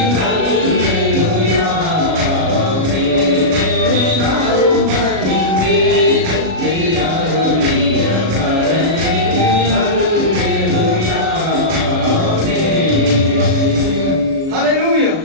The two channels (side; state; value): left; late; 37 ms